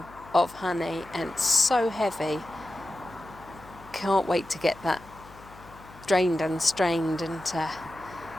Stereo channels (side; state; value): left; noise; hum, 21 dB below the sound